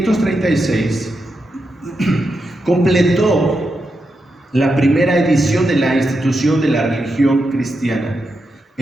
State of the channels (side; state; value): both; normal; correlation 0.86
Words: completó la primera edición de la institución de la religión cristiana,